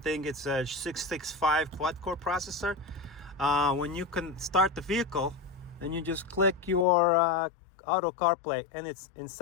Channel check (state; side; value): drops out; right; at 6.9 s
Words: it's a 665 quad-core processor. When you can start the vehicle, then you just click your auto CarPlay, and it's in